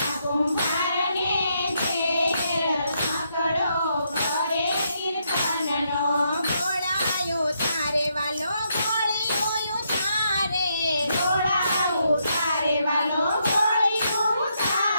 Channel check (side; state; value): both; inverted; correlation -0.77